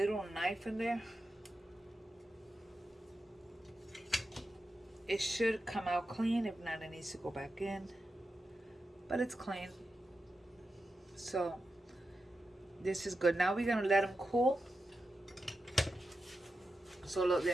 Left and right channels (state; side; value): normal; both; correlation 0.89